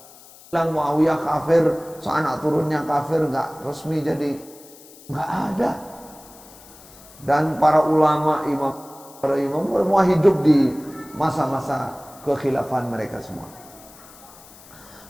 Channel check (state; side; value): noise; left; hiss, 22 dB below the sound